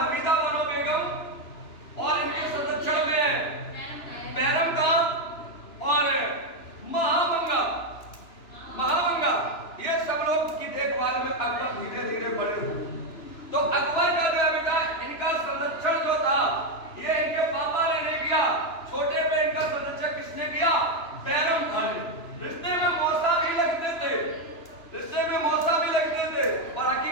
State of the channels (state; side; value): late; right; 2.9 ms